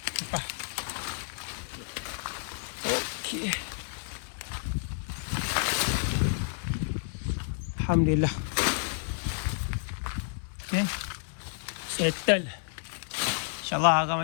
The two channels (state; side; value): silent; right; 56 dB below the other